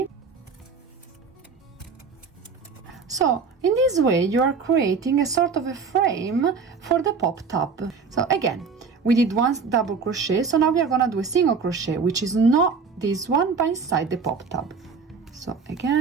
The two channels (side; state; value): left; quieter; 5.3 dB